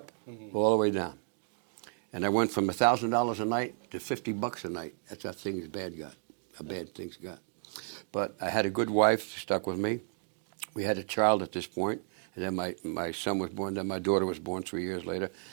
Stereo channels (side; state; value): left; silent; 56 dB below the other